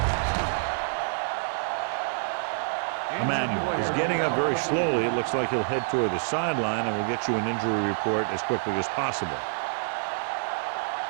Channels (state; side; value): silent; left; digital silence